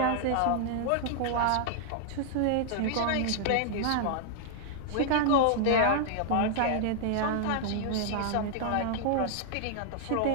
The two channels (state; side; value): different; both; correlation -0.01